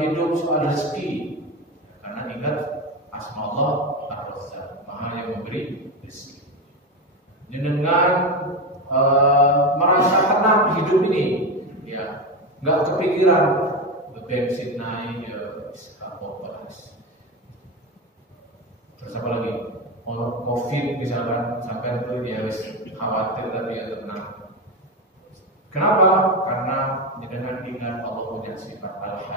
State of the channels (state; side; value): normal; both; correlation 0.16